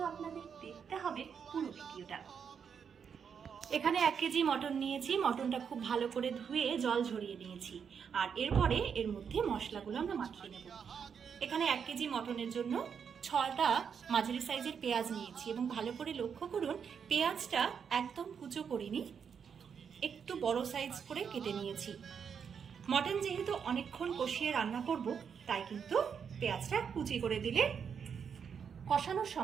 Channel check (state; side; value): quieter; left; 7.0 dB